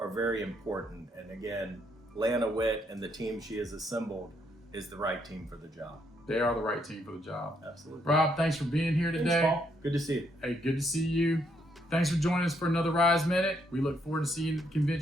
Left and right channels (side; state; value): both; normal; correlation 0.73